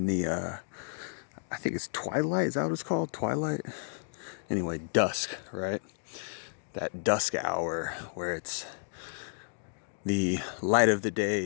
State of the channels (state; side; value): silent; right; digital silence